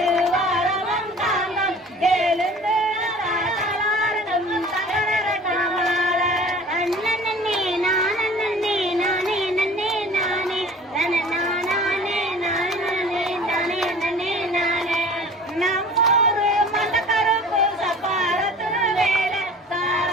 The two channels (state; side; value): normal; both; correlation 0.44